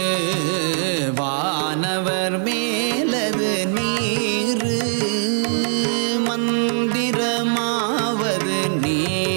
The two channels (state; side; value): silent; left; 65 dB below the other